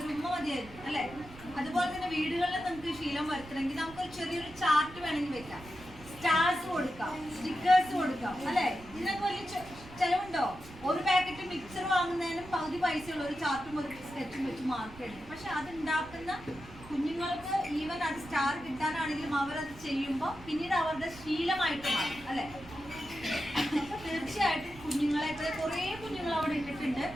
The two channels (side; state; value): right; noise; rumble, 18 dB below the sound